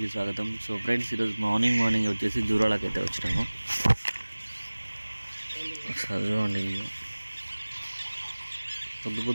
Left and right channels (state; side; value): inverted; both; correlation -1.00